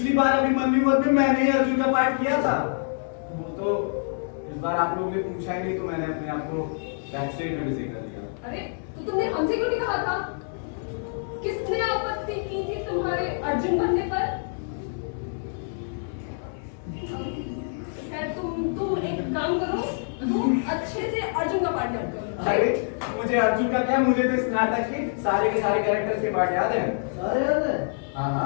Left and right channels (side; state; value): right; silent; 61 dB below the other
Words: बार अभिमन्यु में मैंने ही अर्जुन का पार्ट किया था। वो तो इस बार आप लोगों ने पूछा ही नहीं तो मैंने अपने आप को बैक स्टेज में विजय कर दिया। अरे तो तुमने हमसे क्यों नहीं कहा था? किसने आपत्ति की थी तुम्हारे अर्जुन बनने पर? खैर तुम एक काम करो, तुम अच्छे से अर्जुन का पाठ याद करो। अरे मुझे अर्जुन का क्या, मुझे तो इस नाटक के सारे कैरेक्टर्स के पार्ट याद है। अरे यार हाँ